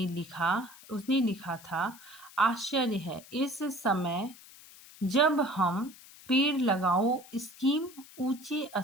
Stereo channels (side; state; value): left; noise; hiss, 20 dB below the sound